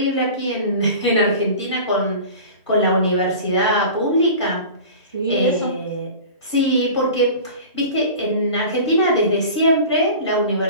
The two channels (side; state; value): both; inverted; correlation -0.37